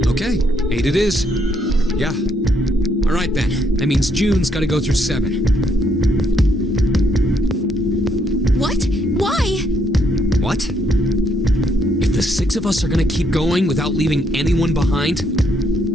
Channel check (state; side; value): normal; both; correlation 0.72